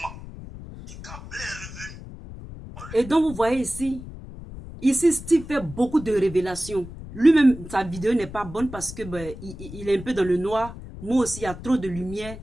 Et quand Blé est revenu... Et donc vous voyez ici Steve fait beaucoup de révélations. Lui-même, sa vidéo n'est pas bonne parce que il est un peu dans le noir. Moi aussi, il y a trop de lumière.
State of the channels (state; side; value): noise; left; rumble, 13 dB below the sound